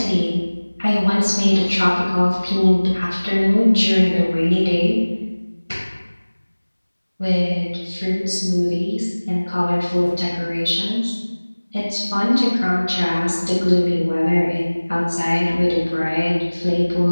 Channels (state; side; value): inverted; both; correlation -1.00